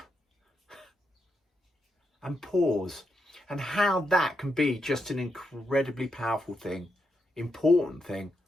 and pause, and how that can be just an incredibly powerful thing, important thing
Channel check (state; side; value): normal; both; correlation 0.83